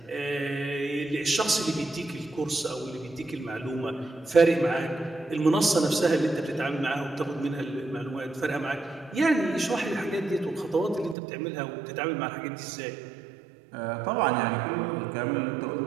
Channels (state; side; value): drops out; left; at 11.2 s